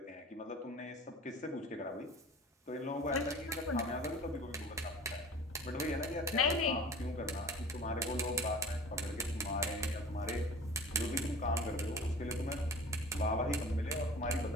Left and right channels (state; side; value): normal; both; correlation 0.42